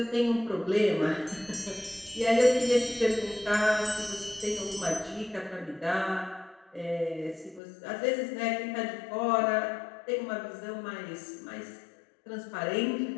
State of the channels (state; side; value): drops out; right; at 7.6 s